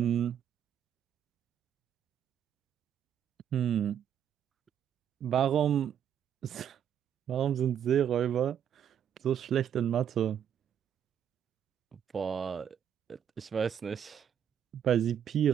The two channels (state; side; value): quieter; left; 9.1 dB